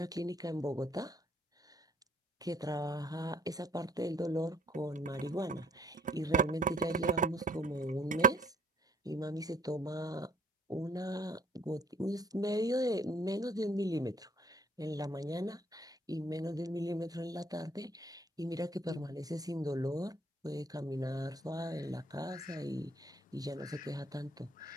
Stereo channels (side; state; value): both; normal; correlation 0.62